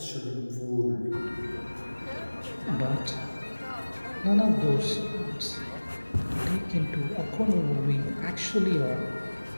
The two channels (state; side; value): inverted; both; correlation -1.00